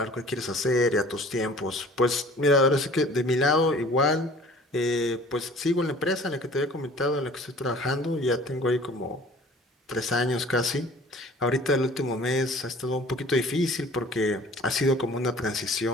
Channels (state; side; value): normal; both; correlation 0.48